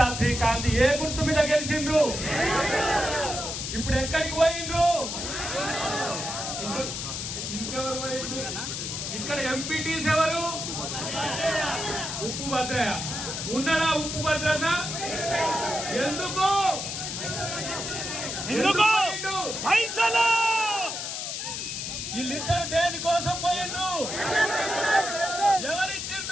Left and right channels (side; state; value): left; noise; hiss, 4 dB below the sound